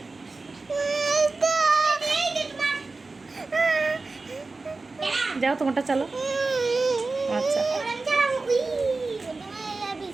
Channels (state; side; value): quieter; left; 3.7 dB